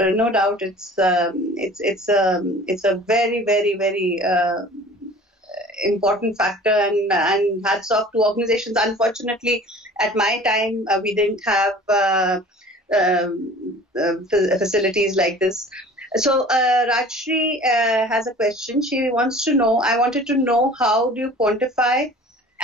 no doubt it's a very, very, very important factor, and hats off to organizations. Unfortunately, at my time we didn't have facilities like this. So Rajshri has a question. She wants to know, I wanted to know, how do you quantify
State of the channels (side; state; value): both; normal; correlation 0.45